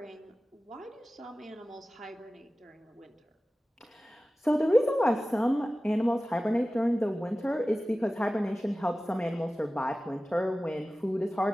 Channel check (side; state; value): both; normal; correlation 0.96